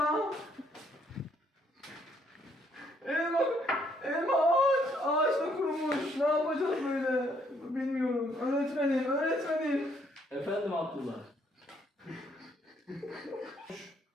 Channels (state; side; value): normal; both; correlation 0.68